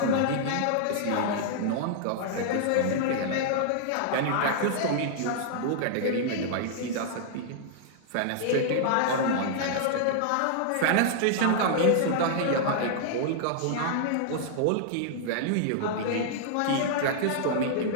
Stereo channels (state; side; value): different; both; correlation -0.01